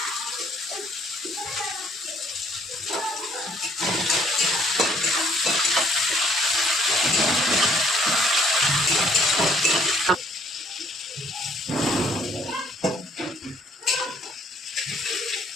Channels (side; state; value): both; normal; correlation 0.63